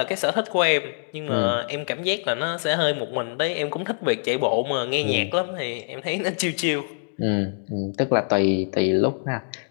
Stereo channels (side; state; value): right; silent; digital silence